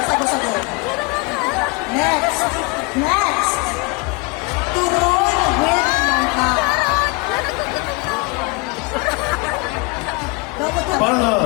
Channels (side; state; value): right; quieter; 28.1 dB